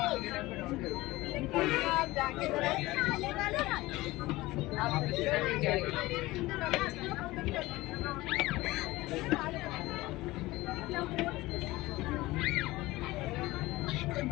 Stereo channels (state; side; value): quieter; right; 19.2 dB